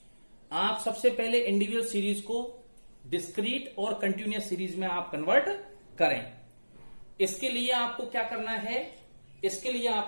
आप सबसे पहले इंडिविजुअल सीरीज को डिस्क्रीट और कंटिन्यूअस सीरीज में आप कन्वर्ट करें। इसके लिए आपको क्या करना है? इसके लिए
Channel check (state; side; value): inverted; both; correlation -1.00